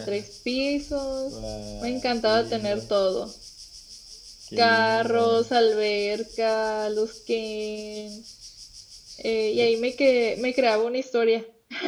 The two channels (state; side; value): identical; both; correlation 1.00